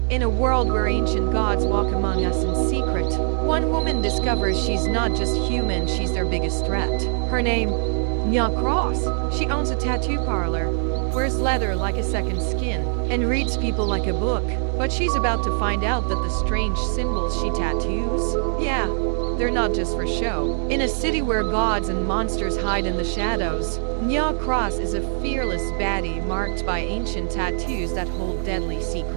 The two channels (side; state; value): left; silent; 59 dB below the other